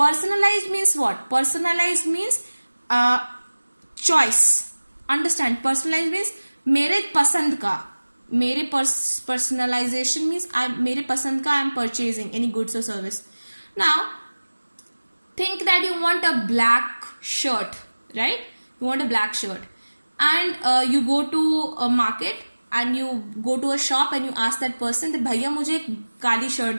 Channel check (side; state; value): both; inverted; correlation -1.00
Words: means what? Personalized means choice. Understand, personalized means मेरे पसंद का, मेरे personalization means मेरे पसंद का I am purchasing any goods or service. Now think that you want a black shirt, right? You want a black shirt, and you go to a market and you go to a shop and you ask that person that भैया मुझे एक काली